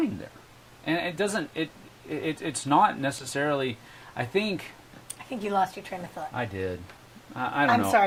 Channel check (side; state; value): both; identical; correlation 1.00